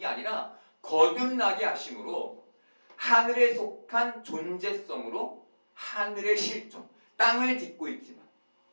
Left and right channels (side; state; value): both; inverted; correlation -1.00